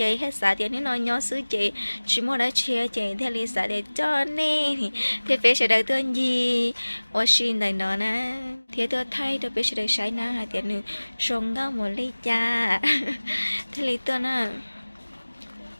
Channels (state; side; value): inverted; both; correlation -1.00